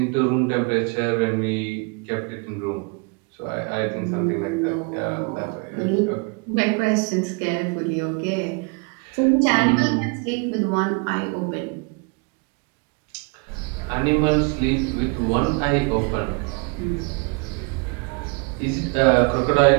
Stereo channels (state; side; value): quieter; left; 33.0 dB